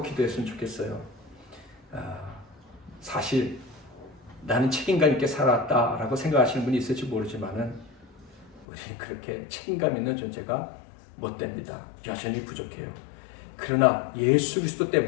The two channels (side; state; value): right; drops out; at 8.7 s